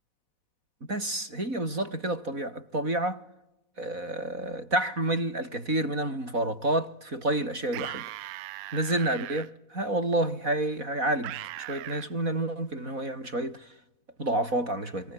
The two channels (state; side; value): late; left; 4.1 ms